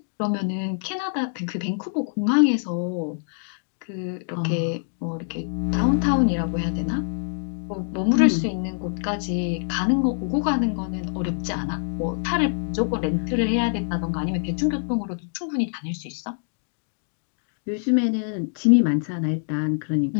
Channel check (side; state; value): right; silent; digital silence